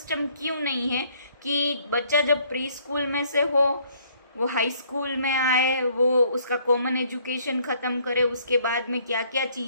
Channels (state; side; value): inverted; both; correlation -0.63